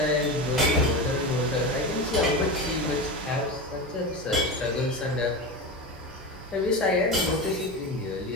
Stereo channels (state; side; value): normal; both; correlation 0.23